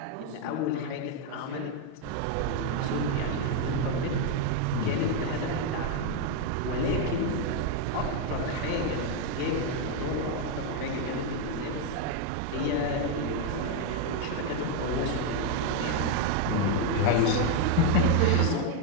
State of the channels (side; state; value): both; different; correlation 0.01